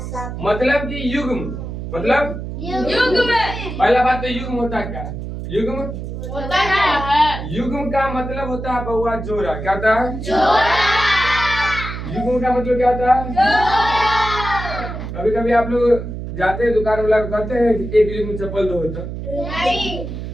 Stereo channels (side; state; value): right; noise; hum, 7 dB below the sound